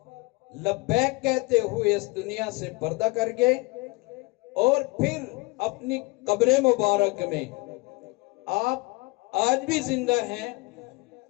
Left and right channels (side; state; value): right; quieter; 25.0 dB